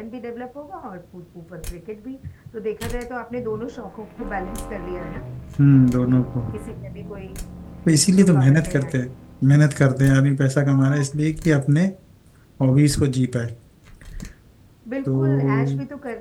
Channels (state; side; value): identical; both; correlation 1.00